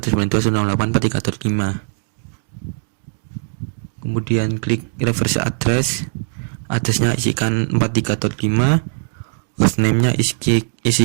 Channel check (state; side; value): silent; left; digital silence